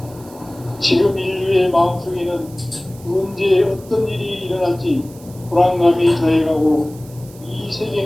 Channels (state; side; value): noise; right; hiss, 23 dB below the sound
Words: 지금 인류의 마음속에는 언제 어떤 일이 일어날지 불안감이 더해가고 이